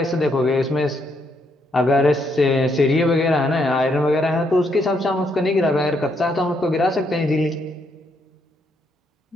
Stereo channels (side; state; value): both; normal; correlation 0.75